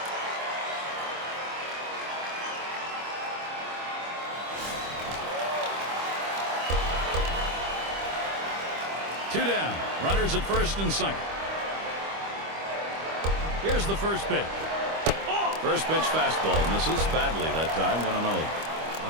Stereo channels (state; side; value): late; left; 25 ms